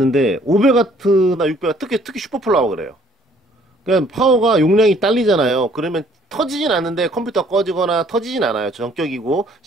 500W나 600W, 특히 슈퍼플라워 그래요. 그러니까 파워가 용량이 딸리잖아요. 그러면 터지진 않는데 컴퓨터가 꺼지거나 터지진 않아요. 전격이고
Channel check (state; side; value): normal; both; correlation 0.60